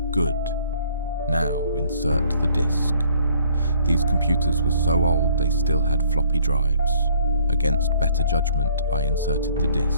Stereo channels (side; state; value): both; inverted; correlation -0.60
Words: "Good. Now insert the disk." These computers were so old they still had floppy drives. Against better judgment, I inserted the